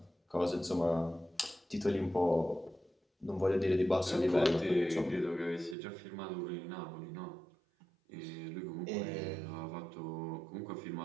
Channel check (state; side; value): drops out; left; at 5.8 s